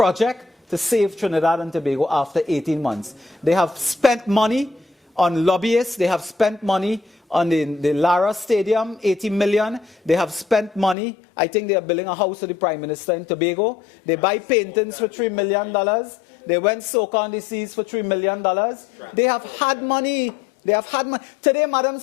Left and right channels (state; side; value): drops out; right; at 11.0 s